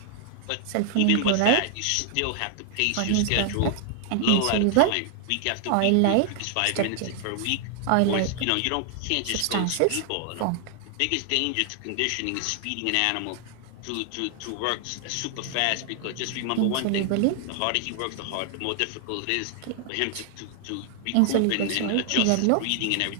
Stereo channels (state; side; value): different; both; correlation 0.00